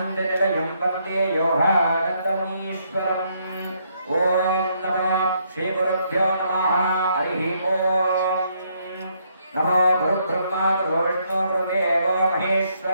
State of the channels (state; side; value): inverted; both; correlation -0.73